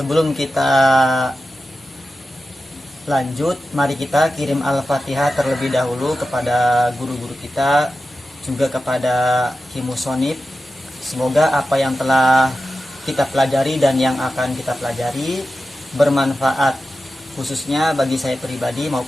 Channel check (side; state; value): both; normal; correlation 0.92